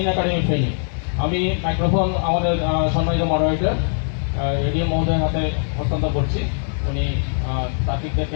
একাডেমি ফেনী। আমি মাইক্রোফোন আমাদের সম্মানিত মডারেটর এডিএম মহোদয়ের হাতে হস্তান্তর করছি। উনি তারিখ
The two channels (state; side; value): silent; right; digital silence